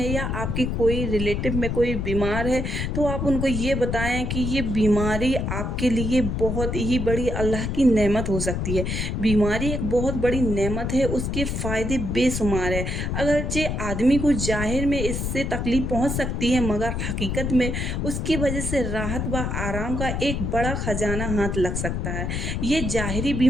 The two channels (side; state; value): left; noise; rumble, 2 dB below the sound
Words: या आपकी कोई रिलेटिव में कोई बीमार है तो आप उनको ये बताएं कि ये बीमारी आपके लिए बहुत ही बड़ी अल्लाह की नेमत हो सकती है। बीमारी एक बहुत बड़ी नेमत है, उसके फ़ायदे बेशुमार है। अगरचे आदमी को ज़ाहिर में इससे तकलीफ़ पहुँच सकती है, मगर हकीकत में उसकी वजह से राहत व आराम का एक बड़ा खजाना हाथ लग सकता है। ये ज़ाहिरी